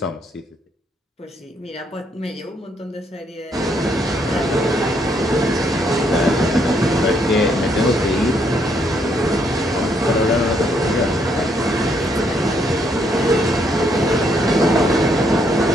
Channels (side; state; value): both; normal; correlation 0.72